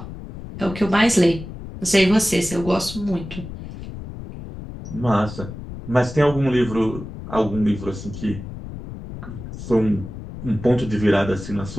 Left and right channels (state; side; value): noise; left; rumble, 11 dB below the sound